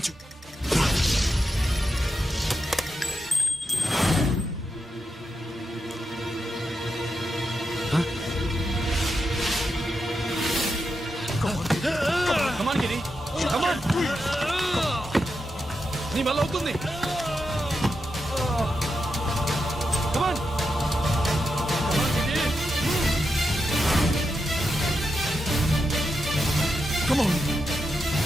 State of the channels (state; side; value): normal; both; correlation 0.86